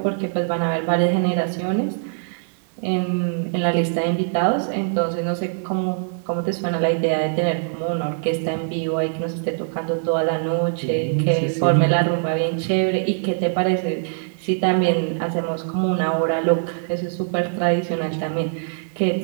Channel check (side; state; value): left; silent; 64 dB below the other